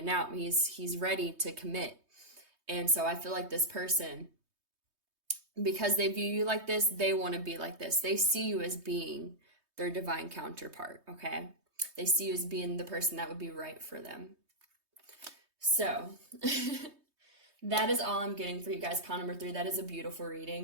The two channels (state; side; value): late; left; 3.2 ms